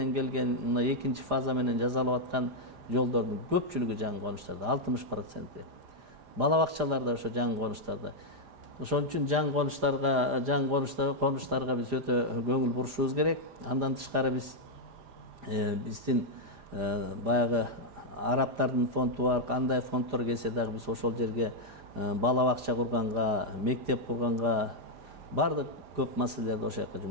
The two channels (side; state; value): left; late; 4.9 ms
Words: келген, мына экинчи фаза менен жасалып аткан жолдордун көпчүлүгү жаңы конуштарда, 60%. Бала бакчаларда ошо жаңы конуштарда. Ошон үчүн жаңы конуштарга биз өтө көңүл бурушубуз керек. Андан тышкары биздин баягы арабтардын фонду бар, кандай фонддор келсе дагы биз ошол жерге бала бакча курганга, мектеп курганга бардык көп маселелерди ошол жака